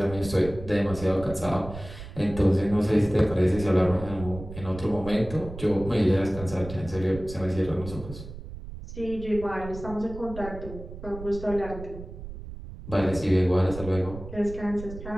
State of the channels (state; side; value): noise; right; rumble, 12 dB below the sound